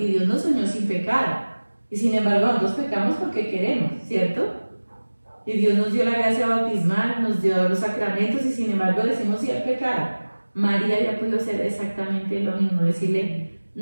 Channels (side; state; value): both; inverted; correlation -1.00